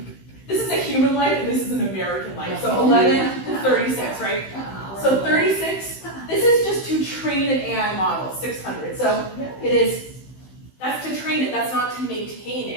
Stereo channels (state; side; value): late; right; 15 ms